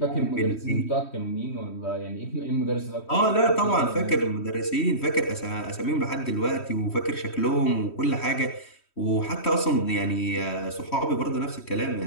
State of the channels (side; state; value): right; late; 3.1 ms